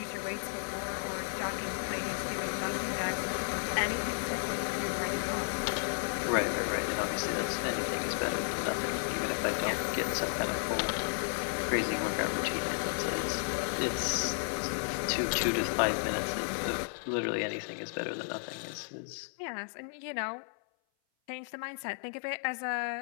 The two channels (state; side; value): silent; right; 56 dB below the other